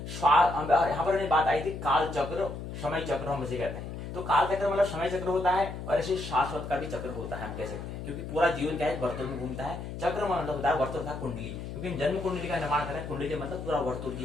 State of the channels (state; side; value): noise; left; hum, 8 dB below the sound